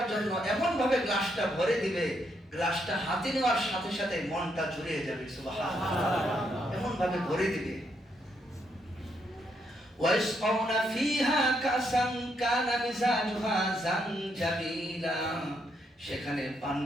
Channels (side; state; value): both; normal; correlation 0.77